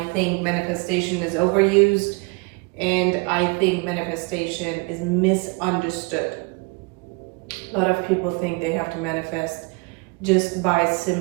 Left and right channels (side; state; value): left; quieter; 30.1 dB